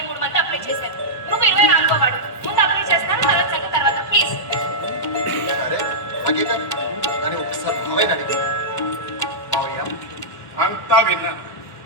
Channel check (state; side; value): late; right; 1.4 ms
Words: మంది అప్లై చేశారు. నువ్వు 24వ వాడు. ముందు అప్లై చేస్తాను, తర్వాత సంగతి తర్వాత ప్లీజ్. సరే అలాగే కానీ ఒకసారి మావయ్య అడిగి. మావయ్య అంతా విన్నాను.